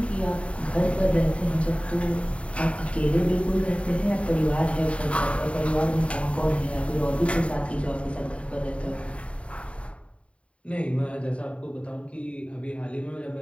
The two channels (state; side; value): late; right; 0.061 ms